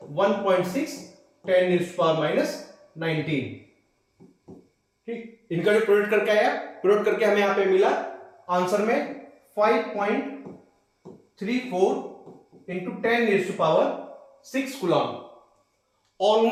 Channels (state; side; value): identical; both; correlation 1.00